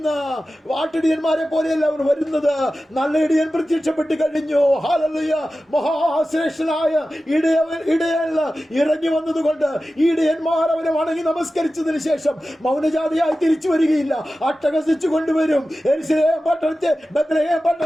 വാട്ടിടിയന്മാരെ പോലെയല്ല അവർ വരുന്നത്. നല്ല ഇടയൻ പ്രത്യക്ഷപ്പെട്ട് കഴിഞ്ഞു. ഹല്ലേലൂയ. മഹാശ്രേഷ്ഠനായ ഇടയൻ ഇറങ്ങി വന്നതുകൊണ്ട് ഇടയന്മാർ അവനെ വണങ്ങി നമസ്കരിച്ചതിന് ശേഷം മൗനജാതിയായി തിരിച്ചു വരികയില്ല. അട്ടഹസിച്ചു കൊണ്ടുവരും. യെരൂശലേം പട്ടണത്തെ, ബത്ലഹേം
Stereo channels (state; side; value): normal; both; correlation 0.94